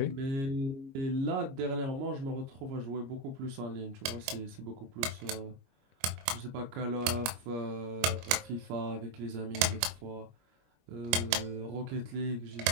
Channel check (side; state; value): left; late; 22 ms